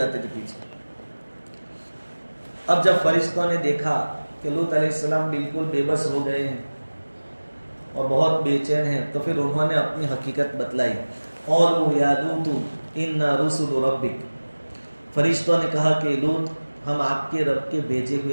تھے پیچھے. اب جب فرشتوں نے دیکھا کہ لوط علیہ السلام بالکل بے بس ہو گئے ہیں اور بہت بے چین ہیں, تو پھر انہوں نے اپنی حقیقت بتلائی. قالوا یا لوط انا رسل ربک, فرشتوں نے کہا کہ لوط ہم آپ کے رب کے بھیجے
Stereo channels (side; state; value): both; inverted; correlation -1.00